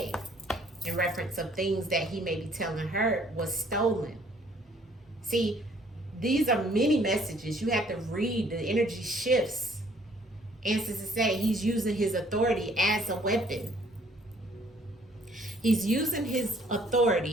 In reference of things that he may be telling her was stolen. See, these are many messages. You have to read. The energy shifts. Ancestors say he's using his authority as a weapon. He's using his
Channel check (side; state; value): both; normal; correlation 0.61